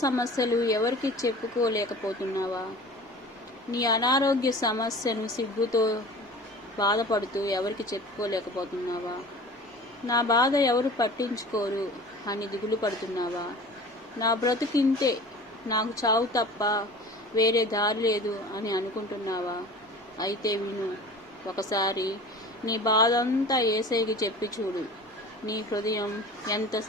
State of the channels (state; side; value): normal; both; correlation 0.40